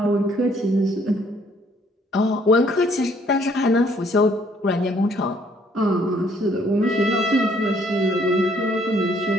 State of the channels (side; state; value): both; normal; correlation 0.64